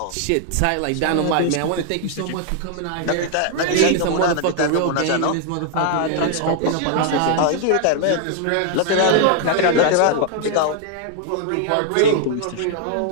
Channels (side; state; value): both; different; correlation 0.00